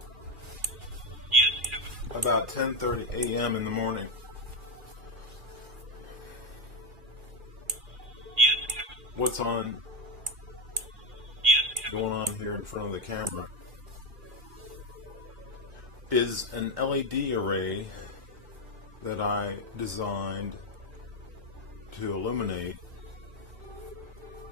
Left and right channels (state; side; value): late; left; 2.4 ms